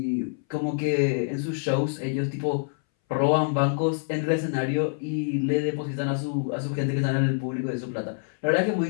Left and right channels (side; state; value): right; silent; 60 dB below the other